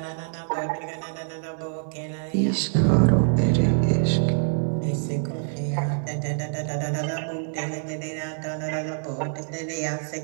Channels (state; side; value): silent; left; digital silence